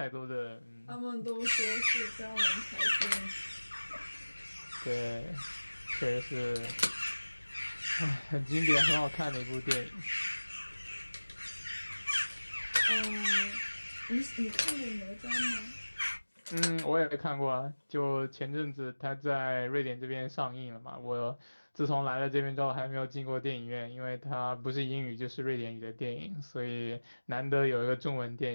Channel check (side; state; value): both; inverted; correlation -1.00